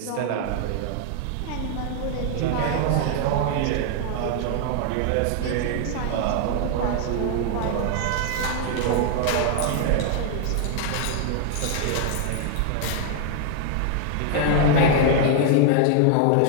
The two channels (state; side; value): different; both; correlation 0.00